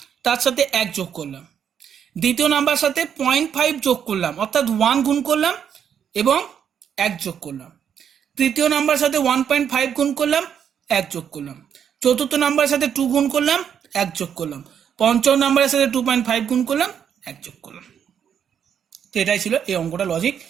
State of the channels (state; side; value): quieter; left; 8.3 dB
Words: তার সাথে 1 যোগ করলাম। দ্বিতীয় নাম্বার সাথে 0.5 যোগ করলাম, অর্থাৎ 1 গুণ করলাম এবং 1 যোগ করলাম। তৃতীয় নাম্বার সাথে 1.5 গুণ করলাম, 1 যোগ করলাম। চতুর্থ নাম্বারের সাথে 2 গুণ করলাম, 1 যোগ করলাম। পঞ্চম নাম্বারের সাথে 2.5 গুণ করলাম, 1 যোগ করলাম। তো এটাই ছিল এই অঙ্কটা লজিক,